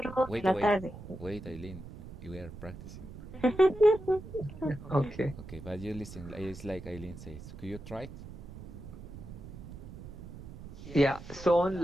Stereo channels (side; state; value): right; noise; rumble, 13 dB below the sound